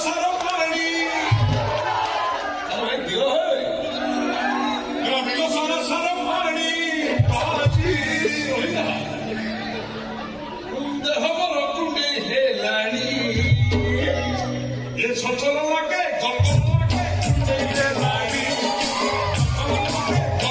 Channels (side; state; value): both; identical; correlation 1.00